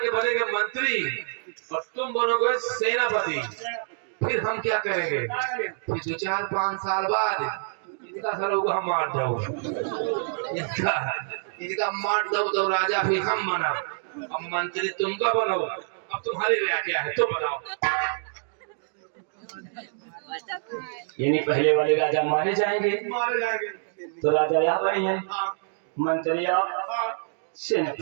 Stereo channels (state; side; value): silent; left; digital silence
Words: के बनेंगे मंत्री और तुम बनोगे सेनापति। फिर हम क्या करेंगे? फिर 2-4-5 साल बाद इनका सर को हम मार दो, इनका मार दो तो राजा फिर हम बना। अब मंत्री तुमका बनो, अब तुम्हारी राय क्या है तो बताओ। यानी पहले वाले राजा मारे जाएंगे मारे जाएंगे। तो राजा यहाँ बनेंगे, हाँ, मंत्री आप हाँ,